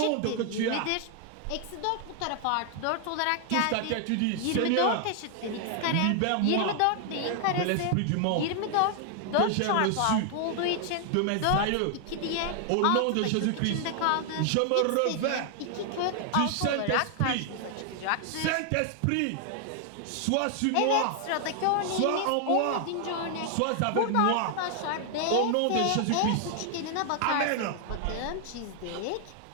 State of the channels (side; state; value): both; different; correlation 0.00